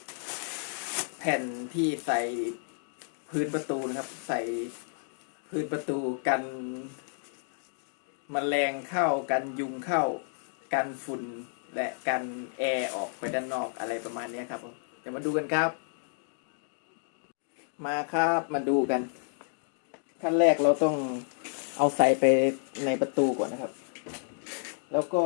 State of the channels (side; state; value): right; silent; digital silence